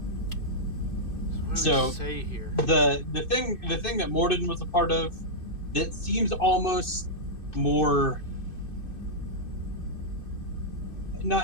What do we say here? The thing that Mordin was a part of that seems almost more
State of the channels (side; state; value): right; late; 2.6 ms